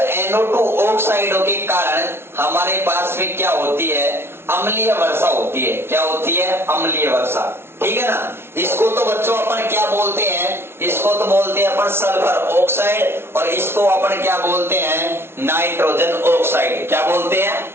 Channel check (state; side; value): late; left; 0.12 ms